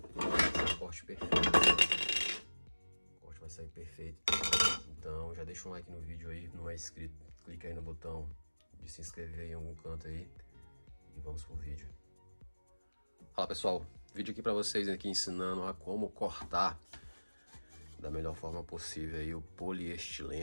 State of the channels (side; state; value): both; inverted; correlation -1.00